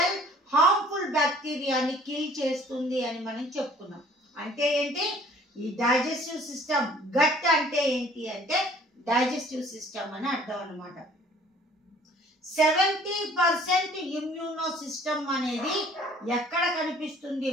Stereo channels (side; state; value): both; normal; correlation 0.54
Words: హార్మ్ఫుల్ బ్యాక్టీరియాని కిల్ చేస్తుంది అని మనం చెప్పుకున్నాం. అంటే ఏంటి, ఈ డైజెస్టివ్ సిస్టమ్ గట్ అంటే ఏంటి అంటే డైజెస్టివ్ సిస్టమ్ అని అర్థం అన్నమాట. 70% ఇమ్యూనో సిస్టమ్ అనేది ఎక్కడ కనిపిస్తుంది